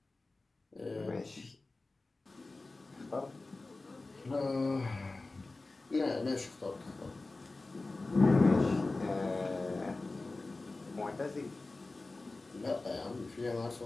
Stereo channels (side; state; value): right; quieter; 3.3 dB